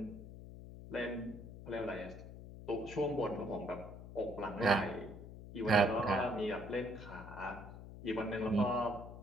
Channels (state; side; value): noise; left; hum, 13 dB below the sound